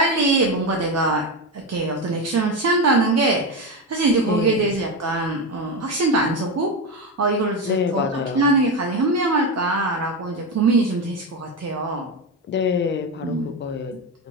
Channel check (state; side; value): normal; both; correlation 0.15